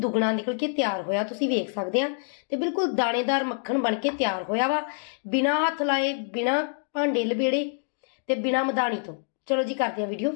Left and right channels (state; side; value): silent; right; 61 dB below the other